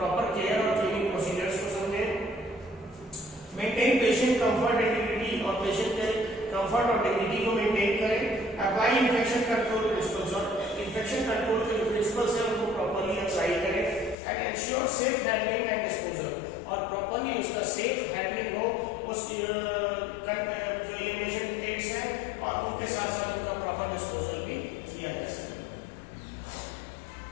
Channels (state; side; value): drops out; right; at 14.2 s